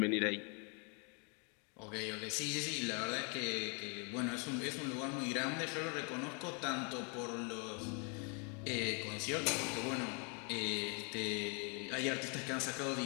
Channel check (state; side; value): quieter; right; 36.2 dB